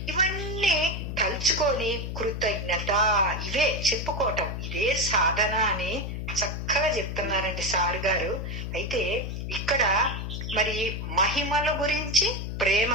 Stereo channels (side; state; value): left; noise; hum, 5 dB below the sound